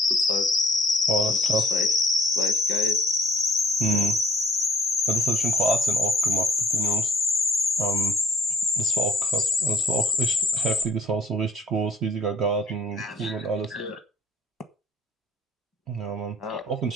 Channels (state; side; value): normal; both; correlation 0.56